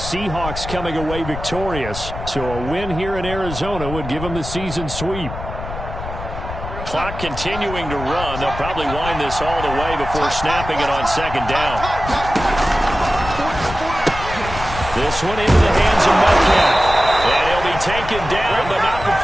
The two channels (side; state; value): left; noise; rumble, 9 dB below the sound